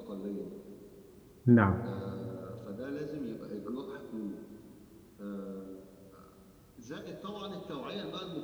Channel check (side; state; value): both; identical; correlation 1.00